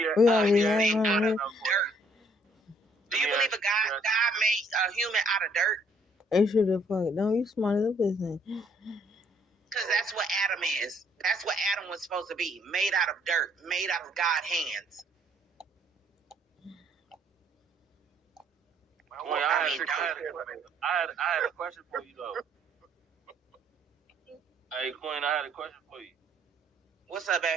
out of dirt? Do you believe God made a human out of dirt? They should have fucked. Don't you smart as a business. Because that's what Adam is. That's what Adam was supposed to be. Made out of dirt. Made out of God's hands. I had a question for you though. Hey Queen, I had a question for you. What's up,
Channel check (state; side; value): normal; both; correlation 0.65